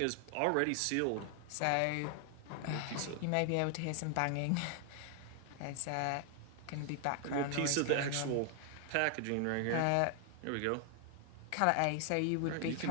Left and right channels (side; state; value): both; different; correlation 0.00